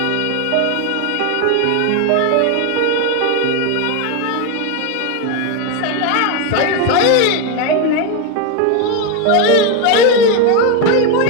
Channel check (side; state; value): both; different; correlation 0.02